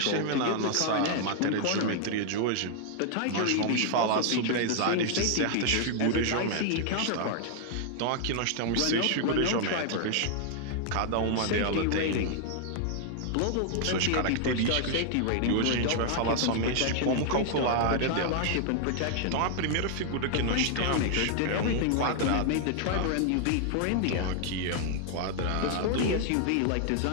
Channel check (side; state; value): both; different; correlation 0.00